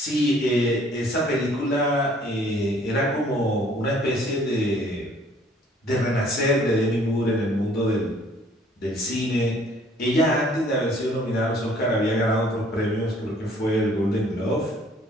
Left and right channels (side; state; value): both; normal; correlation 0.58